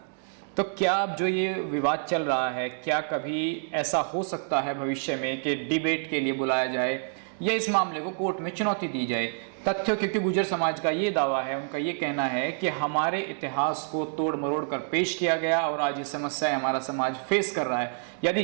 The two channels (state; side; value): silent; left; digital silence